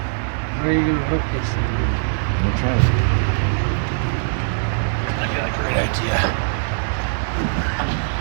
Where are you going to hook this thing? I'm gonna try it. I got a great idea.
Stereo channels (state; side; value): silent; left; digital silence